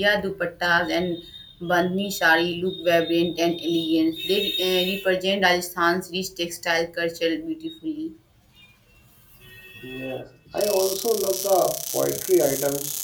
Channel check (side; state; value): both; identical; correlation 1.00